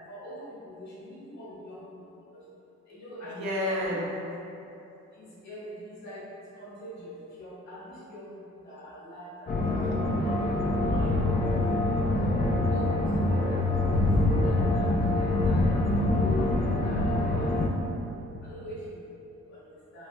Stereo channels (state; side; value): normal; both; correlation 0.61